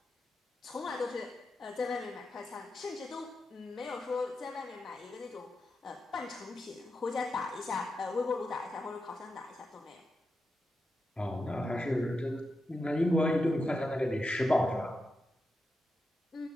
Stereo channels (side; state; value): both; normal; correlation 0.88